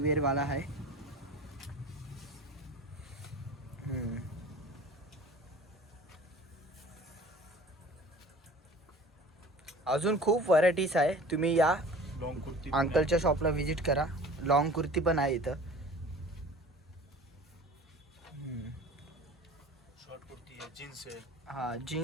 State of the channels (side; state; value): both; normal; correlation 0.43